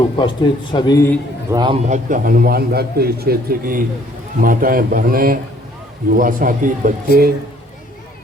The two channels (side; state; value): both; normal; correlation 0.60